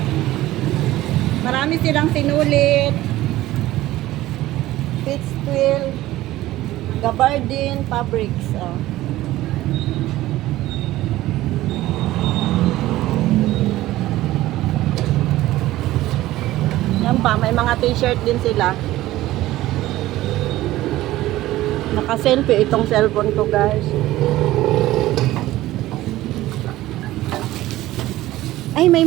Marami silang sinulit. Pitch twill. Gabardine fabrics. Oh. Yan pa, may mga t-shirt din sila. Naka-selfie itong cellphone ko guys. Ay, may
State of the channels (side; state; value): left; quieter; 16.0 dB